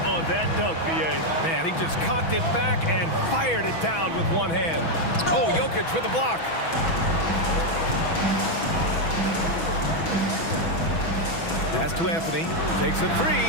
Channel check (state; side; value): late; right; 6.1 ms